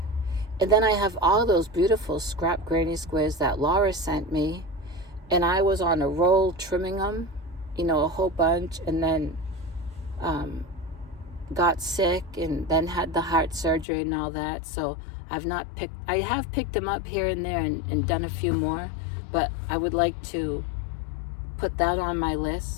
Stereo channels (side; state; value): right; drops out; at 13.9 s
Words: And then I have all those beautiful scrap granny squares that Laura sent me. And I was on a roll trimming them, a whole bunch. And then got sick and then had the heart surgery and all that. So I have picked them up here and there and done a few more. But I would like to put that on my